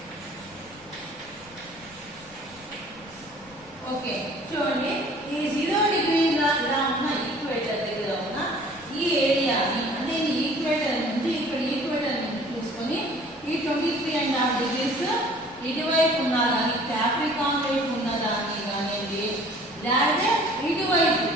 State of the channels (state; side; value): noise; left; rumble, 25 dB below the sound